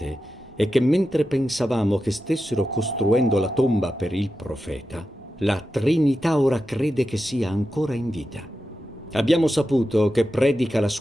è che mentre pensavamo che stessero costruendo la tomba per il profeta, la Trinità ora crede che sia ancora in vita. Abbiamo saputo che predica la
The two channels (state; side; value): normal; both; correlation 0.90